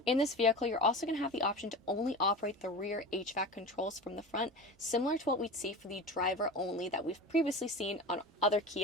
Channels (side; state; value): both; normal; correlation 0.30